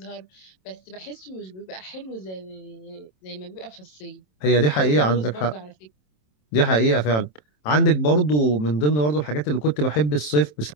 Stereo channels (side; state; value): right; late; 27 ms